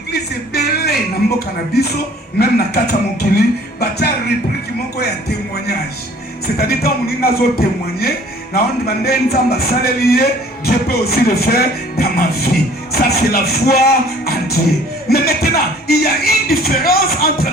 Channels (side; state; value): both; normal; correlation 0.53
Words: est belé dans mon cannabiso, même dans Kata Mokili, bâtir réplique qui m'ont un témoignage. C'est-à-dire quand on a témoigné, on demande Dieu peut aussi le faire dans ma vie. Ça c'est la foi en Dieu. Mais maintenant, il y a une différence entre